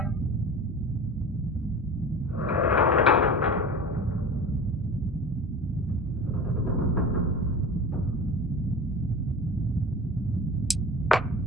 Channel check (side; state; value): both; normal; correlation 0.34